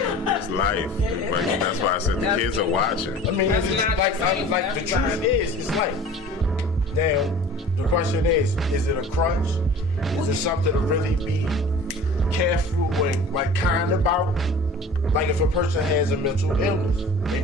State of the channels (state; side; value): normal; both; correlation 0.43